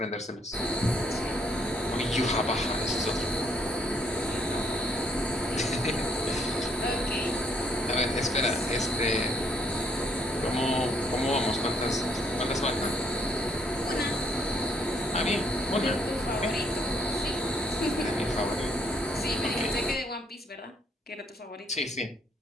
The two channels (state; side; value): normal; both; correlation 0.69